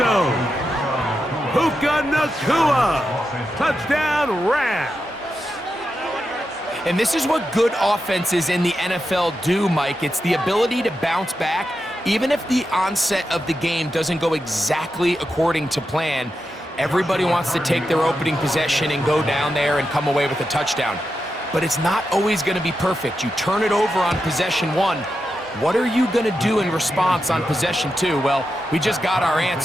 Puka Nacua. Touchdown, Rams. And this is what good offenses in the NFL do, Mike. It's the ability to bounce back, even if the onset of the game doesn't go exactly according to plan. Everybody wants to take their opening possession and go down there and come away with a touchdown. But it's not always going to be perfect. You turn it over on possession 1. What are you going to do in response on possession 2? Well, we just got our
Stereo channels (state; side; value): normal; both; correlation 0.88